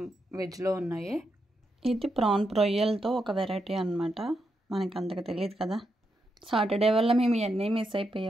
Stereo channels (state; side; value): normal; both; correlation 0.83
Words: వెజ్లో ఉన్నాయి. ఇది ప్రాన్ రొయ్యలతో ఒక వెరైటీ అనమాట, మనకు అంతగా తెలియదు కదా. సాటర్డే వల్ల మేము ఇవన్నీ మిస్